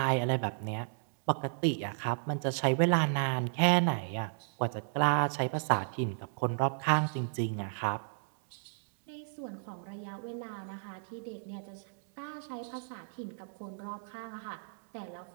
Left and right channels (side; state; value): left; silent; digital silence